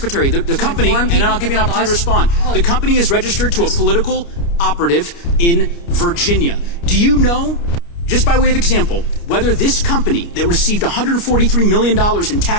the company, and then I'll give you an opportunity to respond. The company is registered to a political operative in Virginia. Do you know, just by way of example, whether this company that received $143 million in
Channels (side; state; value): right; late; 29 ms